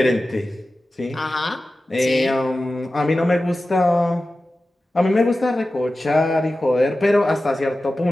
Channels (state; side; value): normal; both; correlation 0.95